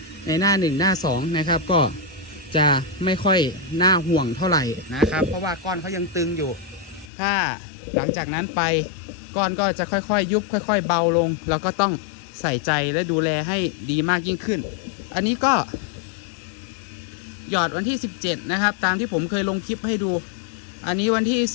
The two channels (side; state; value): right; drops out; at 7.1 s